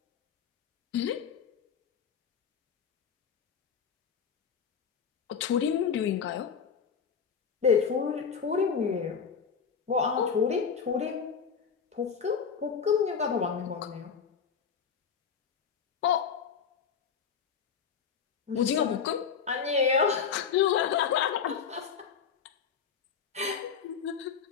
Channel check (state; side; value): quieter; right; 6.6 dB